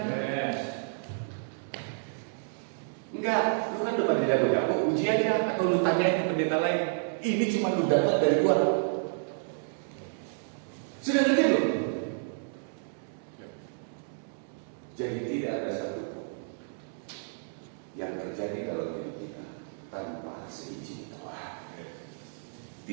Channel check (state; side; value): silent; left; digital silence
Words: Enggak, lu kan udah pada jago-jago, uji aja atau lu tanyain ke pendeta lain. Ini cuma lu dapat dari gua. Sudah ngerti lu? Jadi tidak ada satu yang terjadi dalam hidup kita tanpa seizin Tuhan.